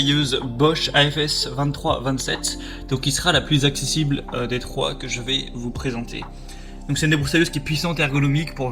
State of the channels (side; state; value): both; identical; correlation 1.00